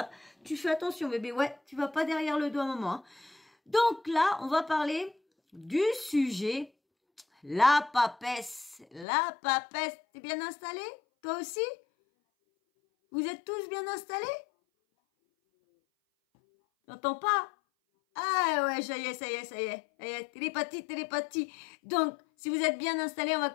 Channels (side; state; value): right; drops out; at 9.1 s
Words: Tu fais attention bébé, ouais, tu vas pas derrière le dos à maman. Donc là, on va parler du sujet, la papesse. La papesse, t'es bien installé? Toi aussi? Vous êtes tous bien installés? J'entends pas? Ah ouais, ça y est, télépathie. Donc, si vous êtes bien installés, on va